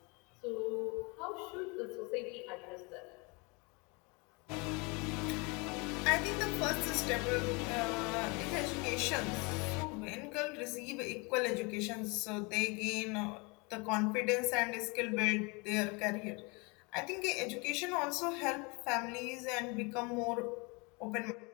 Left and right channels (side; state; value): right; quieter; 28.9 dB